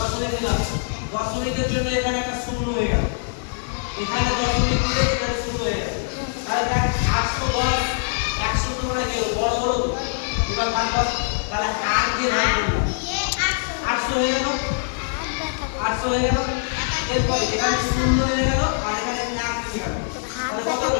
দিলাম দশমিকের জন্য এখানে একটা শূন্য হয়ে গেল এখানে দশমিক দিলে এখানে শূন্য হয়ে গেল তাহলে দেখ 810 100 তুলনায় কি বড় হলো এবার ভাগ কর তাহলে 8 দিয়ে ভাগ করলাম 800 হয়ে গেল 800 হয়ে গেল এরপর এখানে শূন্য হয়ে গেল আর এখানে 1 হয়ে গেল তাহলে কত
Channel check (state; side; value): silent; right; digital silence